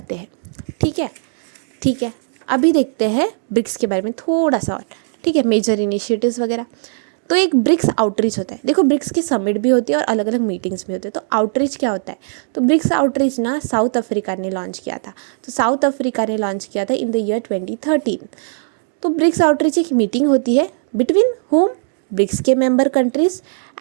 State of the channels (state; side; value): silent; left; digital silence